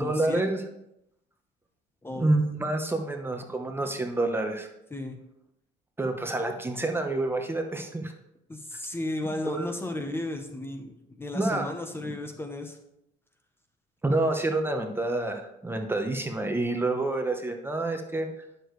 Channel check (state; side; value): normal; both; correlation 0.76